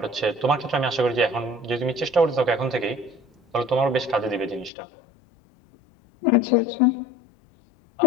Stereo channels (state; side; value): drops out; right; at 4.7 s